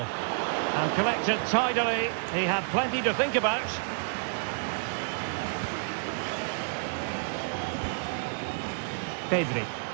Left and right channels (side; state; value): left; silent; 58 dB below the other